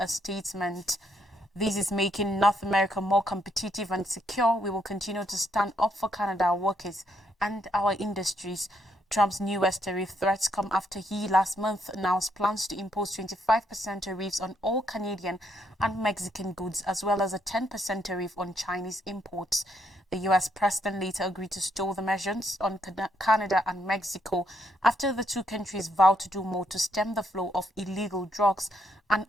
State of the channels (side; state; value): both; normal; correlation 0.74